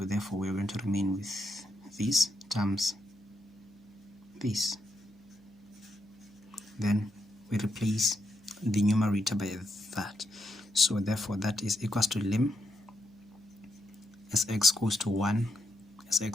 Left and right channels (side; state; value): right; noise; hum, 29 dB below the sound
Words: we're going to remain with this times this. Then we replace the numerator by that. So therefore that is equals to lim as x goes to 1